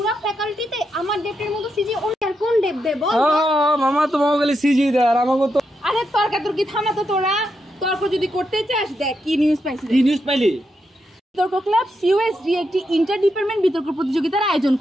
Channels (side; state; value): both; normal; correlation 0.83